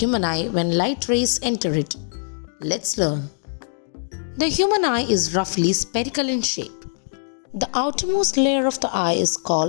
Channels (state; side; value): silent; right; digital silence